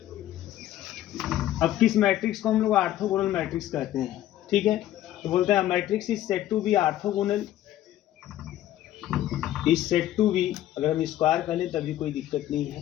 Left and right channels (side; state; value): right; quieter; 13.1 dB